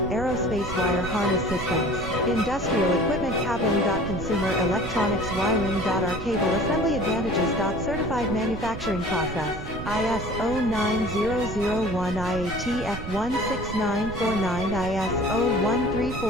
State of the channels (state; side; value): noise; right; rumble, 8 dB below the sound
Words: wire harness systems. Industrial equipment cabling. Consumer electronics wiring. Our cable assembly advantages. Certified manufacturing process. ISO 9001 IATF 16949 ISO